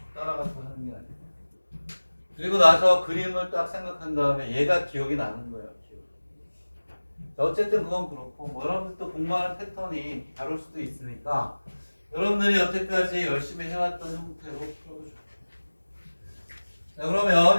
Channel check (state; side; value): inverted; both; correlation -1.00